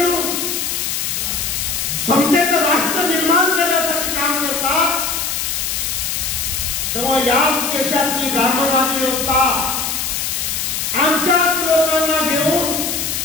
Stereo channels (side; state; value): left; noise; hiss, 1 dB below the sound